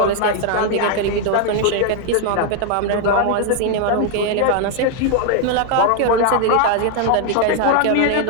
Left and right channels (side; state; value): both; different; correlation 0.00